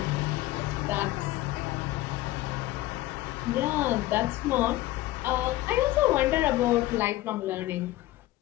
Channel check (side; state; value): right; quieter; 16.7 dB